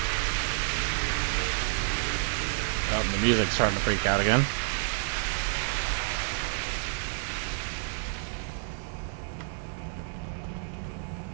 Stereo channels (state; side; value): silent; left; 58 dB below the other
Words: Oh, the music's starting to freak out again.